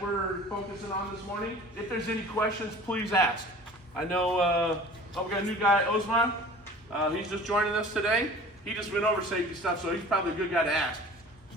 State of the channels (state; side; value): normal; both; correlation 0.44